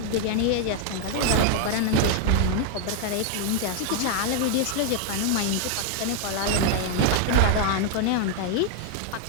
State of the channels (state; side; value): different; both; correlation 0.00